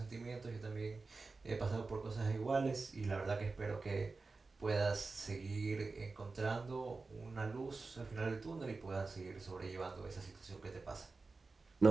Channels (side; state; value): left; quieter; 3.9 dB